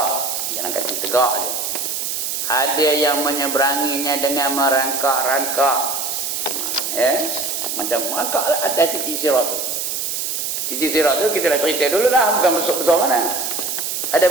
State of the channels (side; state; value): right; noise; hiss, 2 dB below the sound